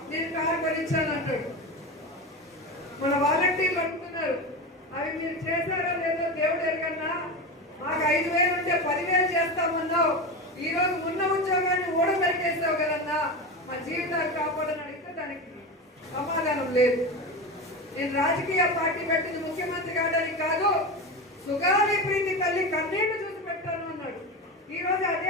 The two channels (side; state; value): both; normal; correlation 0.23